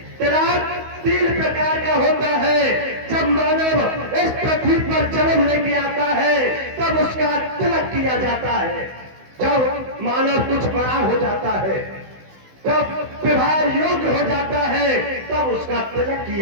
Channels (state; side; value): late; left; 16 ms